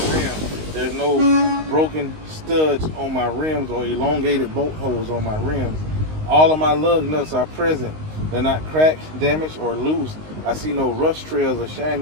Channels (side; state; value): left; late; 19 ms